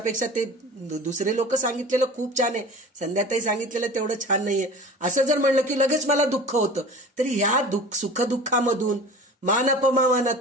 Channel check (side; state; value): both; normal; correlation 0.38